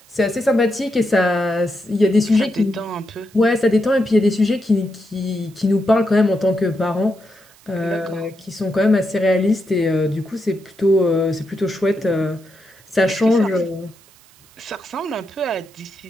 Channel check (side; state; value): right; noise; hiss, 28 dB below the sound